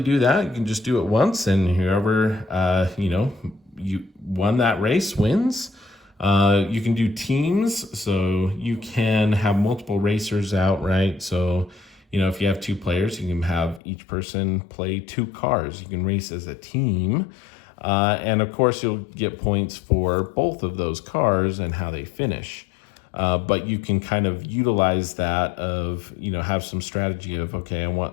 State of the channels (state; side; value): drops out; right; at 13.8 s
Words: do that. You can just do it once, and whoever, you won that race wins. You can do teams, so you can have multiple racers out, right? So, if you have two players, you can have each person play two cars. You can race as a team. And of course, you'll get points for both of those cars and how they finish. But you can kind of utilize that of, have some strategy of, okay, I